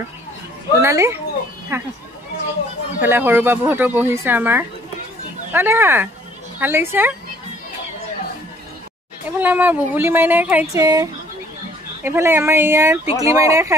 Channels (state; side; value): normal; both; correlation 0.59